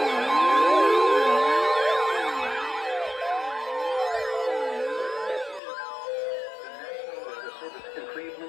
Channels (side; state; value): right; drops out; at 5.6 s